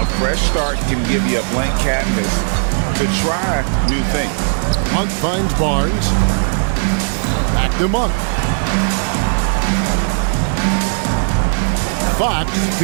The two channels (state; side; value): silent; left; 68 dB below the other